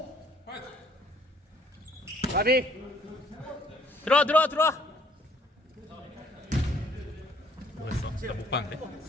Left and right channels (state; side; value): normal; both; correlation 0.61